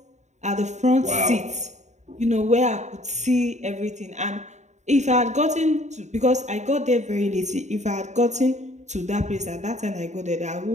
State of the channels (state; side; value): late; left; 0.34 ms